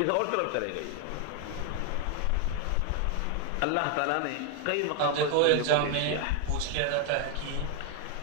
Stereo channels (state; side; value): different; both; correlation 0.01